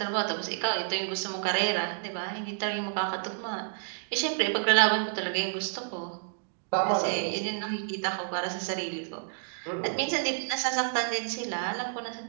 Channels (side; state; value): left; silent; digital silence